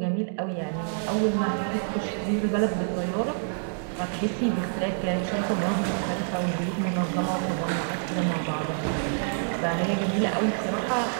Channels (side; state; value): left; silent; 60 dB below the other